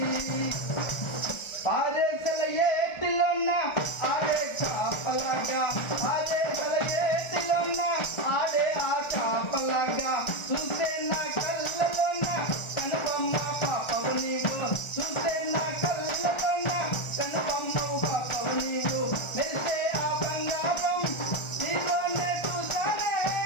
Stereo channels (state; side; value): late; right; 1.4 ms